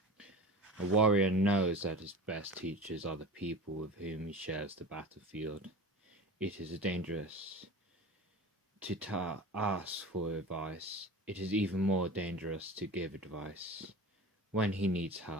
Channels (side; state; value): both; normal; correlation 0.34